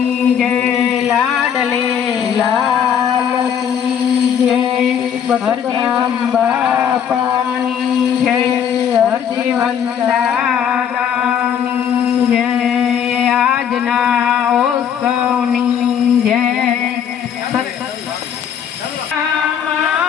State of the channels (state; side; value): quieter; right; 8.4 dB